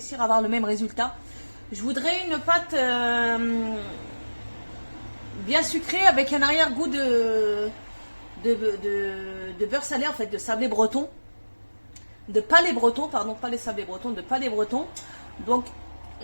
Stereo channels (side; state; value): both; inverted; correlation -1.00